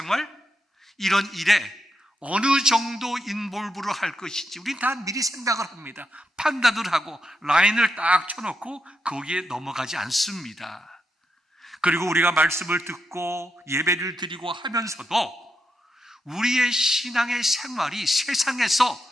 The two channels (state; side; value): normal; both; correlation 0.83